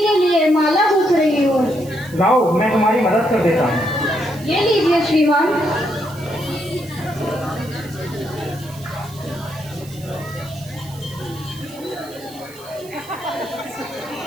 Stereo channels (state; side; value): noise; right; hiss, 20 dB below the sound